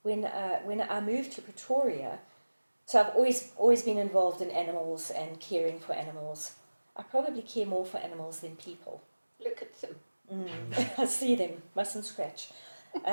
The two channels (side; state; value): both; inverted; correlation -1.00